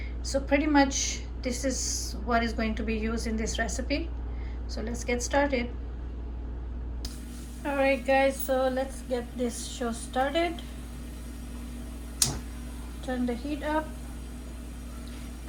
So pretty much this is what is going to be used in this recipe. So let's get started. Alright guys, so let's get this show started. Turn the heat up,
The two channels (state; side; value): identical; both; correlation 1.00